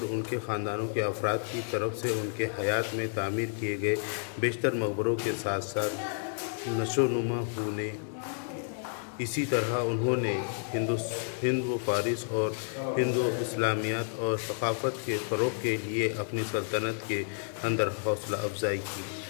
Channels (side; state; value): right; silent; digital silence